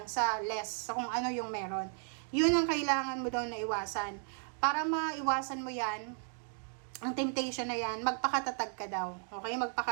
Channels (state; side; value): silent; left; 55 dB below the other